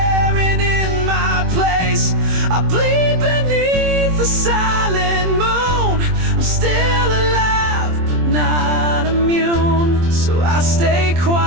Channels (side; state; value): left; late; 23 ms